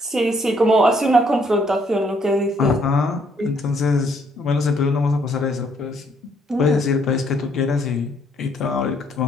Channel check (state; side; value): normal; both; correlation 0.68